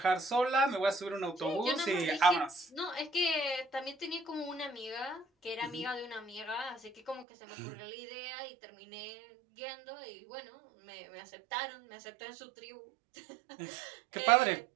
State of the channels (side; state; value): left; drops out; at 7.2 s